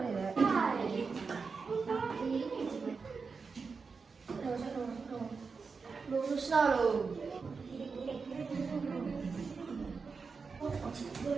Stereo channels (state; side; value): quieter; left; 4.9 dB